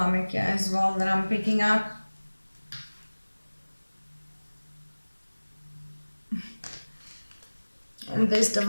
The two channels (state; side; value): inverted; both; correlation -1.00